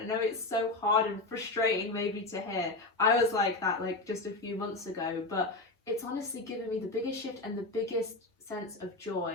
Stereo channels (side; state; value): right; quieter; 3.0 dB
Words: I know it's so hard and frustrating maybe to hear. I was like that like just a few months ago, but it's honestly given me the biggest shift and the biggest sense of